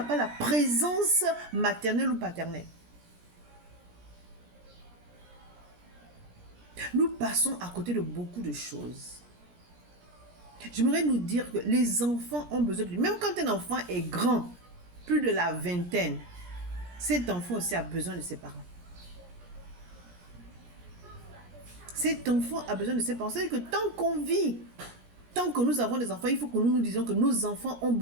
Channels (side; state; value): left; late; 17 ms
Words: pas la présence maternelle ou paternelle. Nous passons à côté de beaucoup de choses. J'aimerais nous dire que les enfants ont besoin de... Même quand un enfant est grand, plus de la vingtaine, cet enfant aussi a besoin de ses parents. Cet enfant a besoin de ses parents. C'est-à-dire que tant qu'on vit, tant que nous avons des enfants, il faut que nous nous disions que nos enfants